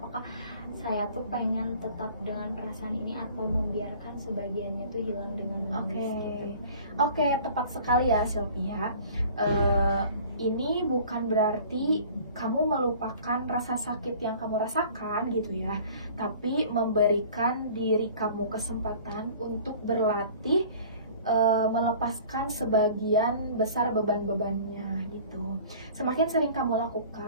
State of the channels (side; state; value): both; inverted; correlation -0.47